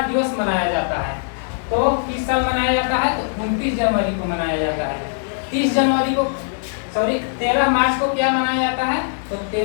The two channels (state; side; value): silent; right; digital silence